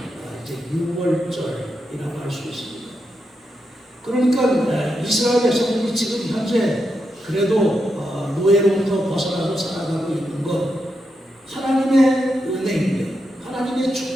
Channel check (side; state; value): both; normal; correlation 0.85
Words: 이제 유월절이라고 할 수 있습니다. 그러니까 이스라엘 백성들이 지금 현재 그래도 노예로부터 벗어나고 살아가고 있는 것 하나님의 은혜인데 하나님의